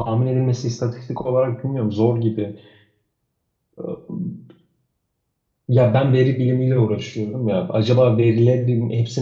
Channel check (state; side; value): identical; both; correlation 1.00